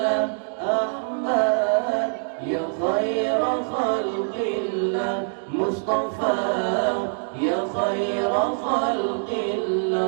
أحمد، يا خير خلق الله مصطفى، يا خير خلق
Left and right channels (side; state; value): left; silent; digital silence